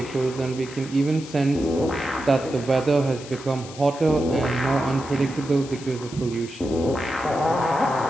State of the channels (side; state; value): left; noise; hiss, 16 dB below the sound